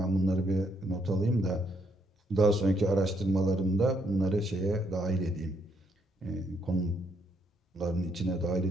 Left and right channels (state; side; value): normal; both; correlation 0.73